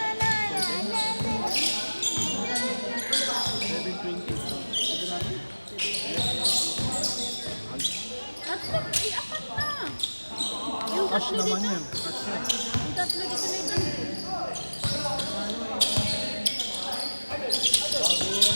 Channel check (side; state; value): both; inverted; correlation -1.00